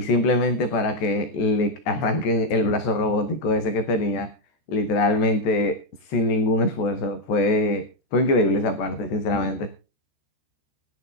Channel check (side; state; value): right; late; 14 ms